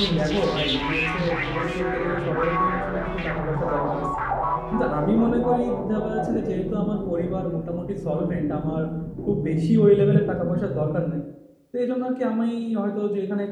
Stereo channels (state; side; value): identical; both; correlation 1.00